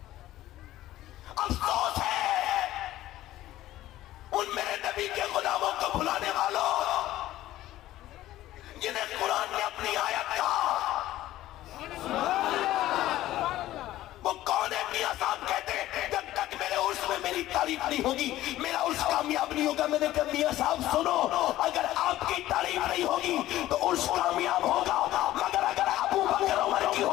افسوس ہے ان میرے نبی کے غلاموں کو بھلانے والوں جنہیں قرآن نے اپنی آیت کہا. وہ کون ہے؟ میاں صاحب کہتے ہیں جب تک میرے عرس میں میری تعریف نہیں ہوگی میرا عرس کامیاب نہیں ہوگا. میں نے کہا میاں صاحب سنو، اگر آپ کی تعریف نہیں ہوگی تو عرس کامیاب ہوگا، مگر اگر ابو بکر عمر کی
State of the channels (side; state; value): right; quieter; 14.8 dB